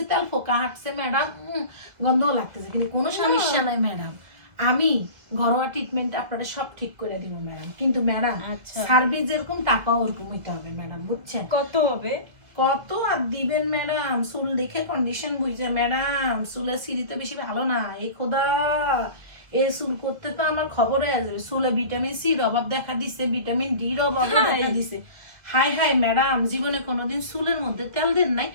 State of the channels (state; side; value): late; left; 2.0 ms